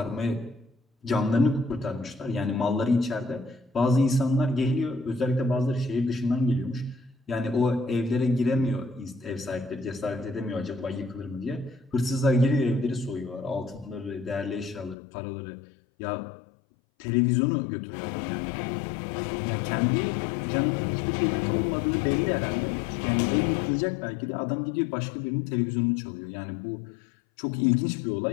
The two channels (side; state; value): right; drops out; at 15.0 s